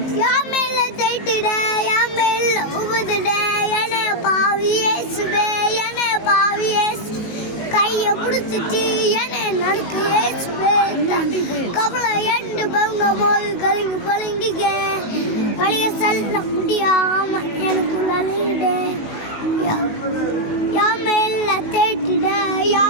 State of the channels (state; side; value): late; right; 19 ms